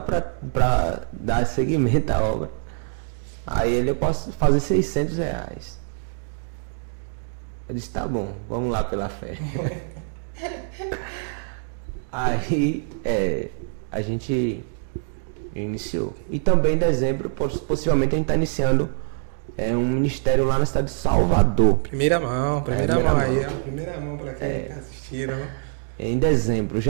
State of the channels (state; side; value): silent; left; digital silence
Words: para dar seguimento à obra. Aí ele, eu posso fazer R$600. Eu disse, tá bom, vamos lá pela fé. Aí a gente iniciou. E também em dezembro, possivelmente a gente está iniciando um ministério lá na cidade de Salvador. Miramão. Em dezembro.